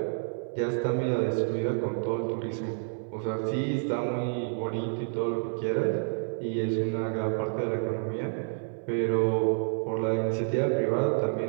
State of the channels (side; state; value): left; silent; 59 dB below the other